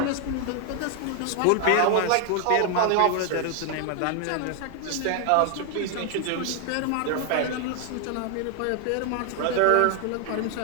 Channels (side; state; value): both; different; correlation 0.00